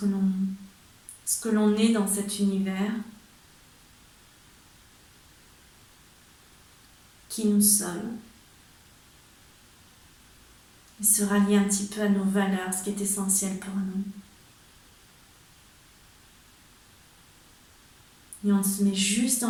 l'on est dans cet univers, qui nous sommes. Et se rallier un petit peu à nos valeurs, ce qui est essentiel pour nous. Et on se met juste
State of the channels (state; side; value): identical; both; correlation 1.00